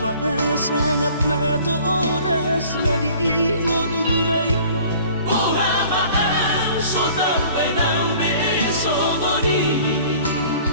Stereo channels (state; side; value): inverted; both; correlation -0.50